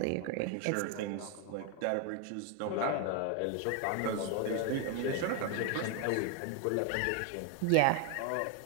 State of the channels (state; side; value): different; both; correlation 0.01